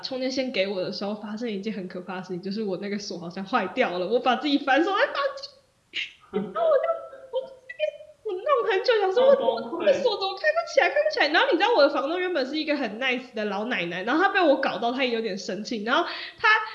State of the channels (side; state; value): both; identical; correlation 1.00